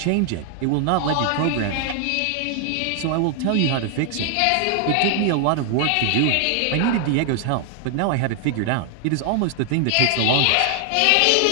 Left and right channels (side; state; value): both; different; correlation 0.00